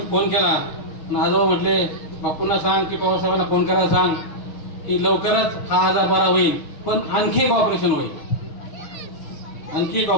फोन केला आणि आजोबा म्हटले बापूंना सांग की पवार साहेबांना फोन करायला सांग की लवकरच हा आजार बरा होईल, पण आणखी एक ऑपरेशन होईल.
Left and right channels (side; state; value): right; late; 6.4 ms